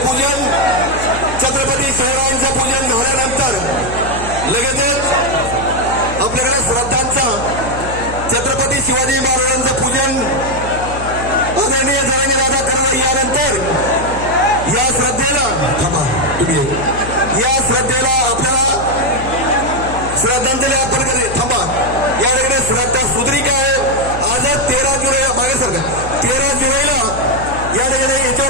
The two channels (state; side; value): noise; left; hum, 9 dB below the sound